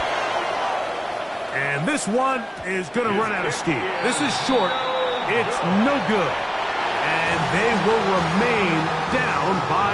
And this one is going to run out of steam. This is short. It's no good. And they will remain down by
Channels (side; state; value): both; identical; correlation 1.00